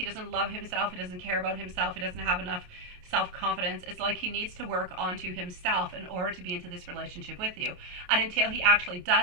doesn't love himself, he doesn't care about himself, he doesn't have enough self-confidence. It's like he needs to work onto himself in order to be into this relationship with you. And until he actually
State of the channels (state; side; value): late; left; 28 ms